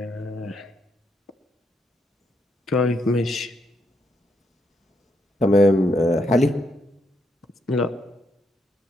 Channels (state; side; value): normal; both; correlation 0.77